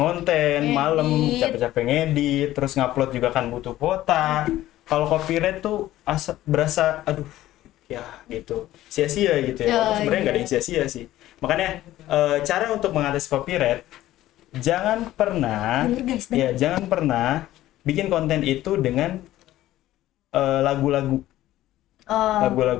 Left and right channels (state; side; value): quieter; right; 14.7 dB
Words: ngonten malam, Ngedit. capek-capek ngedit, terus ngupload juga kan butuh kuota. Kalau copyright tuh berasa aduh ya gitu sia-sia gitu ya. Oh, Sebenarnya nggak ada iya. yang sia-sia sih. Makanya cara untuk mengatasi copyright, jangan pernah Bener, guys, bener. ya jangan pernah bikin konten itu dengan lagu-lagu